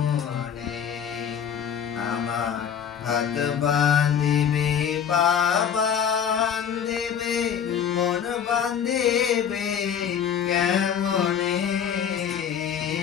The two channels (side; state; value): right; quieter; 8.2 dB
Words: আমার হাত বান্ধিবি পা বান্ধিবি মন বান্ধিবি কেমনে